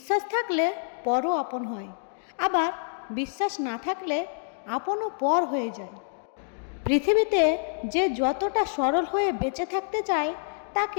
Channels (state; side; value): silent; right; digital silence